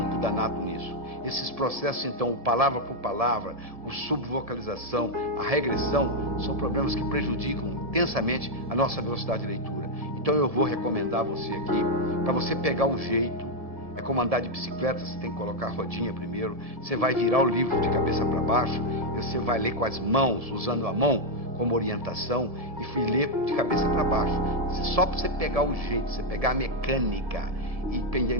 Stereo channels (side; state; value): left; late; 1.7 ms